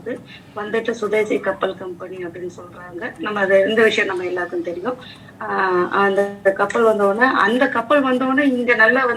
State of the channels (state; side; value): identical; both; correlation 1.00